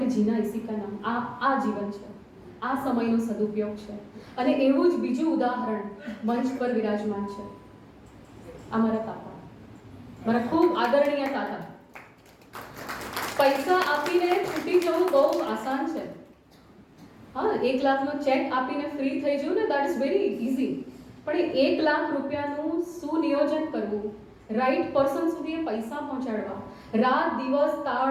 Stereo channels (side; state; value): both; identical; correlation 1.00